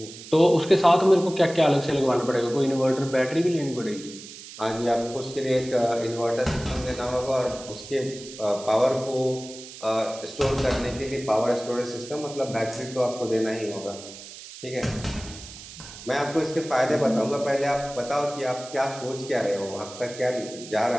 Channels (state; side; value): noise; right; hiss, 15 dB below the sound